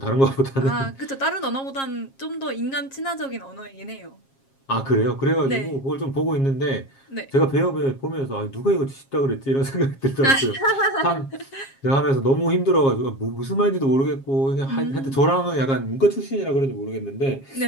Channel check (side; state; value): right; late; 7.4 ms